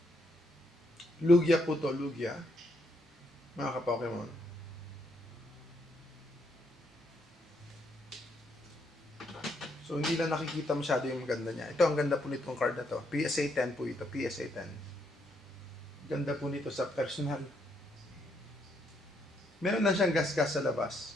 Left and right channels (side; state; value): both; normal; correlation 0.74